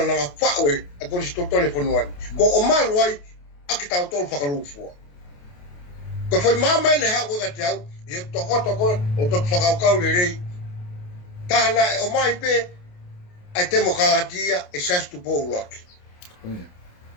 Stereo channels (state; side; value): late; right; 28 ms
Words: na nga whaue, ai konistu tole whanuani. Ko o malu ai, aki tau tolu whakalufua. Ko whai mamai le hao ka te au, i he toko o toku whakaukau le rei. Tāna o mai pe, ai temo kalatia e sastu pou laki. Oia.